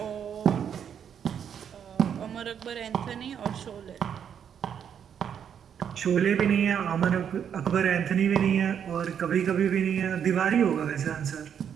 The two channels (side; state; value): left; quieter; 8.3 dB